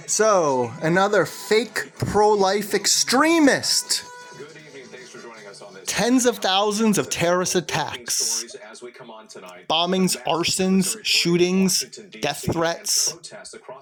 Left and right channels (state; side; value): identical; both; correlation 1.00